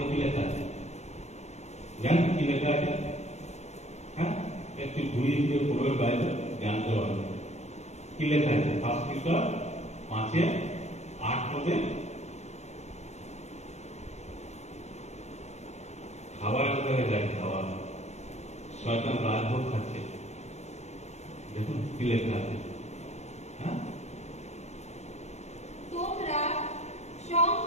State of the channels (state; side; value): late; right; 0.32 ms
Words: কি লেখা আছে জানেন? কি লেখা আছে? হ্যাঁ, একটু ঘুরিয়ে ঘুরিয়ে পড়বে বাইরে জানতে পারবে কি লেখা আছে। ফার্স্ট পিটার 5:8 পদে খাবারের কথা লেখা আছে। খাবার, শয়তান রাজভোগ খাচ্ছে, দেখুন কি লেখা আছে। হ্যাঁ, তোমরা